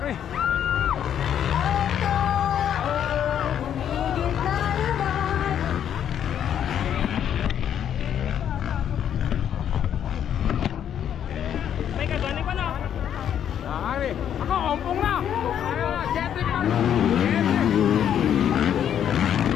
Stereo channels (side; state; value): right; quieter; 9.5 dB